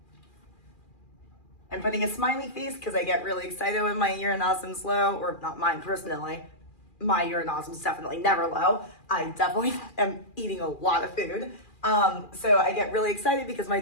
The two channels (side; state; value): right; late; 2.4 ms